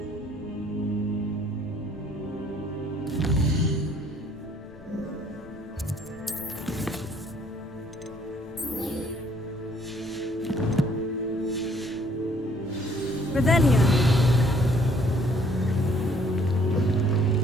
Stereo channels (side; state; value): left; noise; rumble, 21 dB below the sound